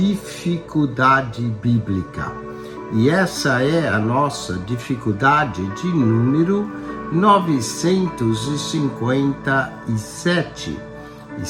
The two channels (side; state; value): both; identical; correlation 1.00